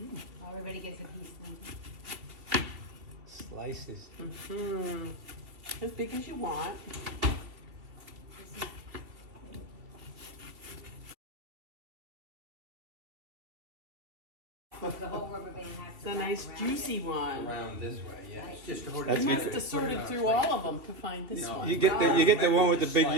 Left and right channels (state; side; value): late; left; 2.7 ms